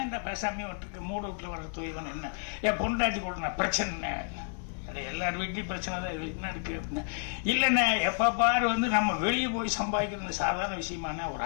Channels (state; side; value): silent; right; 57 dB below the other